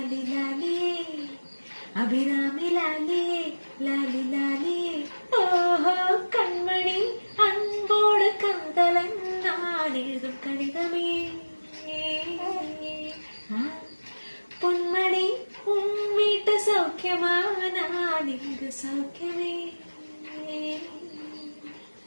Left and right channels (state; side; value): inverted; both; correlation -1.00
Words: லாலியே அபிராமி லாலியே லாலி லாலியே ஓஹோ கண்மணி அன்போடு காதலன் நான் எழுதும் கடிதமே பொன்மணி உன் வீட்டு சௌக்கியமா நான் இங்கு சௌக்கியமே